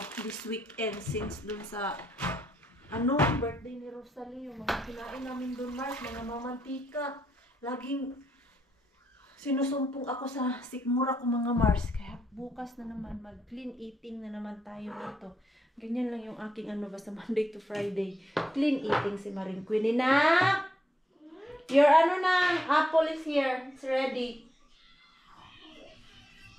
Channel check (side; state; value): both; normal; correlation 0.79